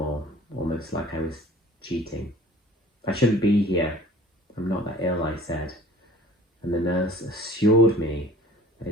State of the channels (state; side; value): normal; both; correlation 0.47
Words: almost like I was cheating. I shouldn't be here. I'm not that ill, I said. And the nurse assured me that